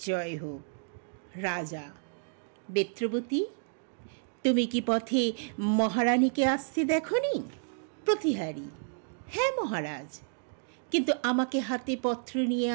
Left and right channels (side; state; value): left; silent; digital silence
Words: জয় হোক। রাজা: বেত্রবতী, তুমি কি পথে মহারানীকে আসতে দেখনি? প্রতিহারী: হ্যাঁ মহারাজ, কিন্তু আমাকে হাতে পত্র নিয়ে